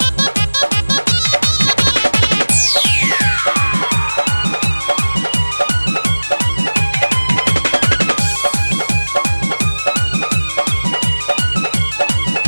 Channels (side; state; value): both; inverted; correlation -1.00